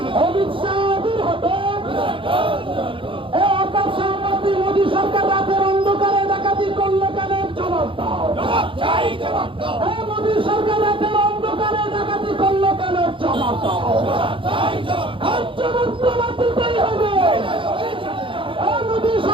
অমিত শাহ দূর হতো। এই আকাশ সম্পত্তি মোদী সরকার রাতের অন্ধকারে ডাকাতি করলে কেন? জবাব দাও। এই মোদী সরকার রাতের অন্ধকারে ডাকাতি করলে কেন? জবাব দাও। আর জবাব তোমার দিতেই হবে। এই মোদী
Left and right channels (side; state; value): left; late; 0.25 ms